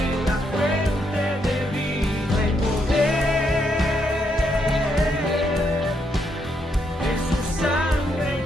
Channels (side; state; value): both; normal; correlation 0.77